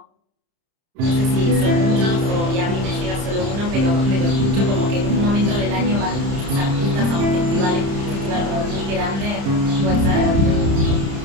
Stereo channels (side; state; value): left; late; 30 ms